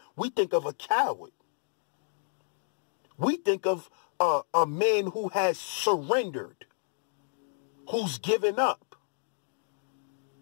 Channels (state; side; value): silent; right; digital silence